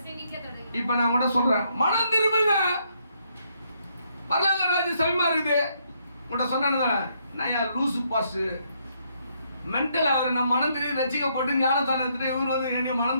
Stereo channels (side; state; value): both; inverted; correlation -0.73